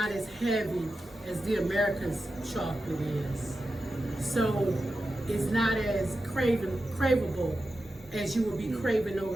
as heavy as the America's chocolate is. So it's not as craveable as you would be craving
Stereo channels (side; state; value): both; normal; correlation 0.91